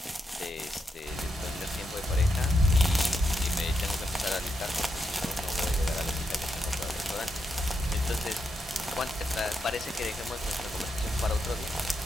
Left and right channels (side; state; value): both; normal; correlation 0.83